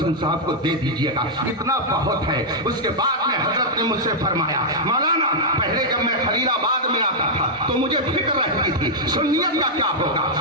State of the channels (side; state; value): both; normal; correlation -0.05